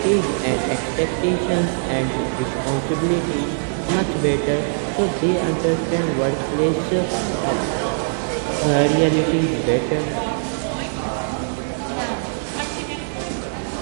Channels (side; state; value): left; silent; digital silence